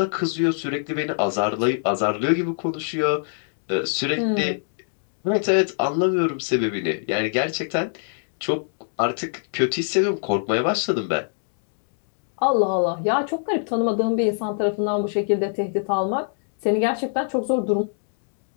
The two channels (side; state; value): right; silent; digital silence